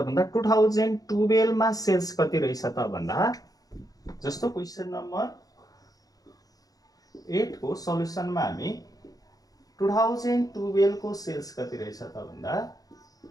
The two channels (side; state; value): right; late; 0.18 ms